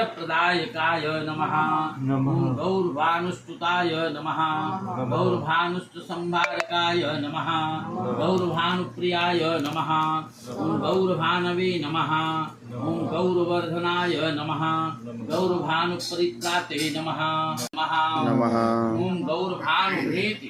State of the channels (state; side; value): identical; both; correlation 1.00